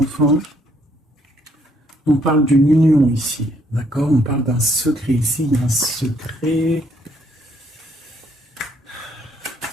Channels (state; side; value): normal; both; correlation 0.69